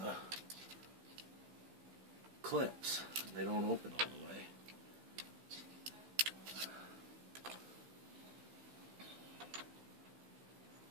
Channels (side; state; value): left; late; 16 ms